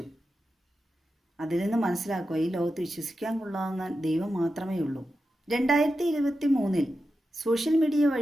അതിൽ നിന്ന് മനസ്സിലാക്കുക, ഈ ലോകത്ത് വിശ്വസിക്കാൻ കൊള്ളാവുന്ന ദൈവം മാത്രമേ ഉള്ളൂ. 2023 സോഷ്യൽ മീഡിയ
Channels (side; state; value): both; normal; correlation 0.90